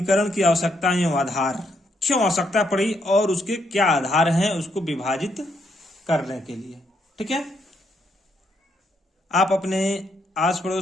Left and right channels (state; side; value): normal; both; correlation 0.75